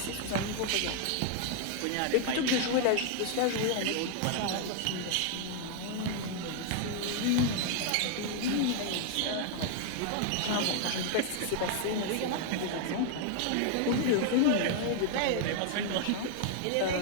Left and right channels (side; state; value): both; different; correlation 0.00